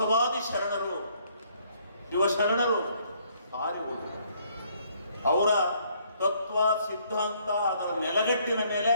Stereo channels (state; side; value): inverted; both; correlation -0.66